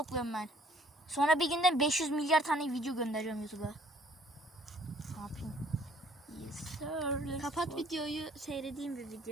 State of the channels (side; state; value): both; normal; correlation 0.59